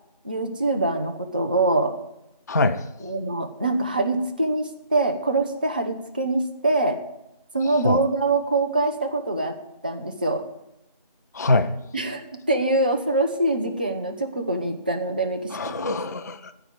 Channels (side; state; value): both; inverted; correlation -0.54